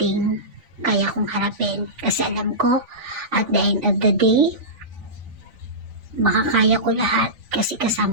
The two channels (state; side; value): late; left; 3.5 ms